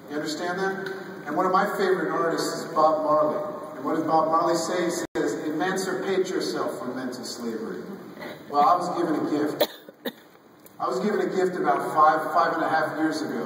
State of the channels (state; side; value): identical; both; correlation 1.00